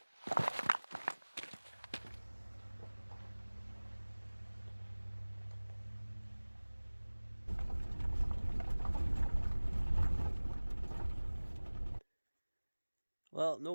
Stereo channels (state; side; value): inverted; both; correlation -1.00